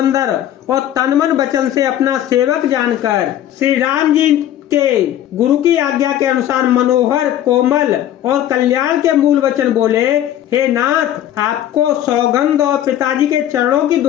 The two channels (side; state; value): right; quieter; 11.7 dB